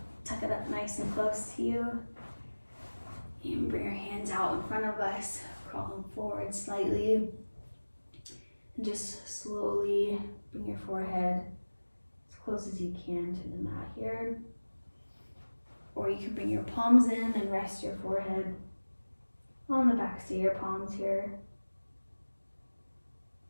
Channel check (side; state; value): both; inverted; correlation -1.00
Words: Tuck it up nice and close to you. And bring your hands out in front of us, crawling forward slightly. And just slowly bring your forehead as close as you can to the mat here. Or you can bring your palms in and rest your forehead on the backs of your palms here.